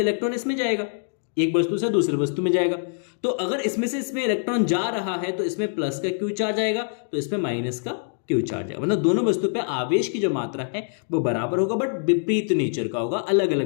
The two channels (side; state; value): right; silent; digital silence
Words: इलेक्ट्रॉन इसमें जाएगा, एक वस्तु से दूसरी वस्तु में जाएगा। तो अगर इसमें से इसमें इलेक्ट्रॉन जा रहा है तो इसमें प्लस का क्यू चार्ज आएगा, तो इसमें माइनस का क्यू चार्ज आएगा। मतलब दोनों वस्तु पे आवेश की जो मात्रा है वो बराबर होगा, बट विपरीत नेचर का होगा, अलग